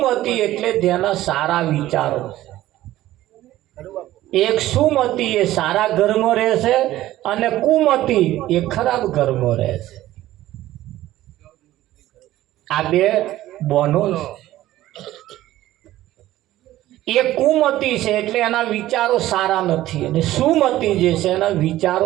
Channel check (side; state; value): left; quieter; 15.0 dB